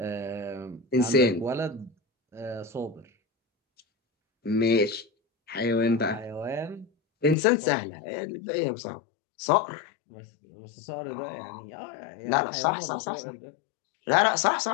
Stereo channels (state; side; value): drops out; right; at 7.4 s